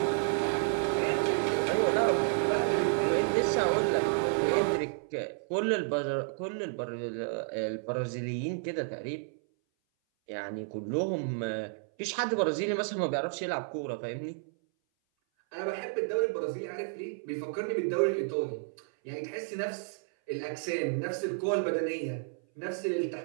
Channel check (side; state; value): left; silent; 57 dB below the other